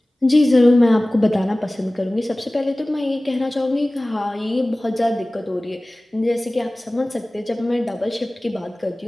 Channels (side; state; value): both; normal; correlation 0.98